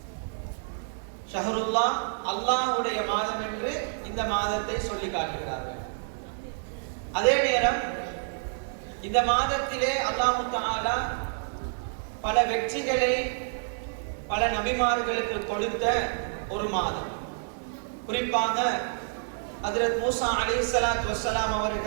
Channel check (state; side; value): silent; left; digital silence